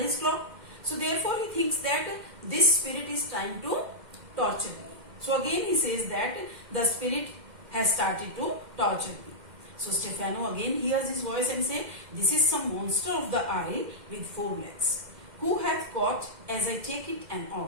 his clock. So therefore he thinks that this spirit is trying to torture me. So again he says that the spirit has started to torture me. So Stefano again hears his voice and say, "This is some monster of the isle with four legs. Who hath caught as I take it an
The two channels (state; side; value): late; left; 2.1 ms